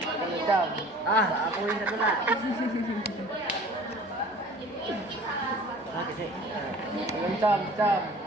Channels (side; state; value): both; normal; correlation 0.46